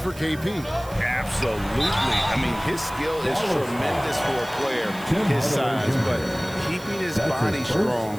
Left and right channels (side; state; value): right; noise; hiss, 19 dB below the sound